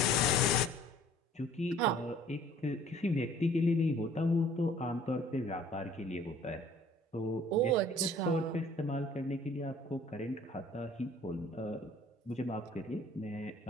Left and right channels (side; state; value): both; normal; correlation 0.53